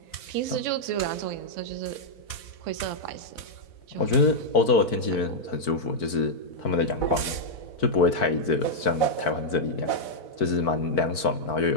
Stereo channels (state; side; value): late; right; 4.5 ms